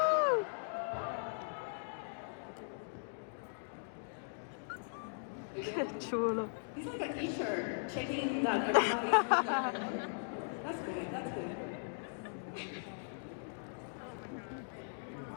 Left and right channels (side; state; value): right; silent; digital silence